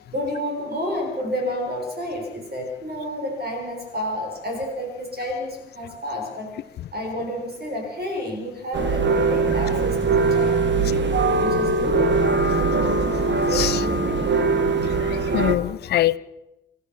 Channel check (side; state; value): both; normal; correlation 0.07